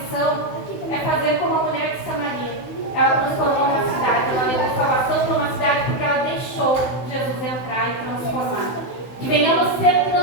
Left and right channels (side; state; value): right; late; 16 ms